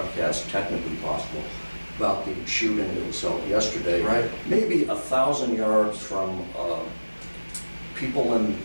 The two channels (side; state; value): both; inverted; correlation -1.00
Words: technically possible, about the shooting that was held yesterday. Right. Maybe 1,000 yards from people in